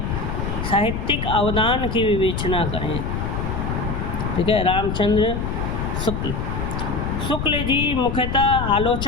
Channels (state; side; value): noise; left; rumble, 3 dB below the sound